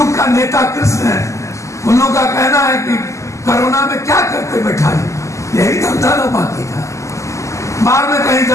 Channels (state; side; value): late; right; 0.15 ms